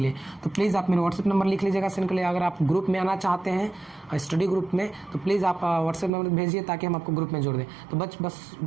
लिए। तो प्लीज़ आप मेरे व्हाट्सएप नंबर लिख लीजिएगा सेंड के लिए। अगर आप ग्रुप में आना चाहते हैं, स्टडी ग्रुप में, तो प्लीज़ आप व्हाट्सएप नंबर भेजिए ताकि हम आपको ग्रुप में जोड़ दें। तो बस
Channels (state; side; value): drops out; left; at 6.1 s